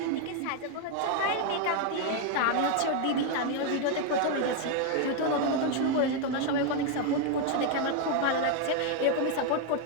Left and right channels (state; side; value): different; both; correlation 0.01